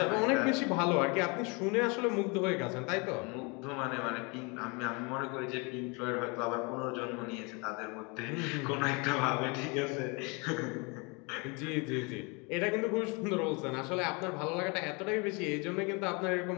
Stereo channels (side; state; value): right; quieter; 30.2 dB